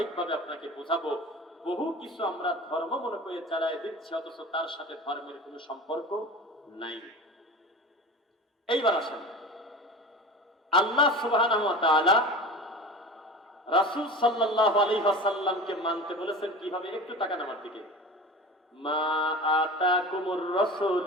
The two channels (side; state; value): both; normal; correlation 0.34